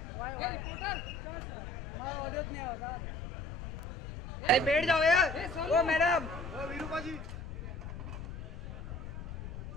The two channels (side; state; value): left; noise; rumble, 7 dB below the sound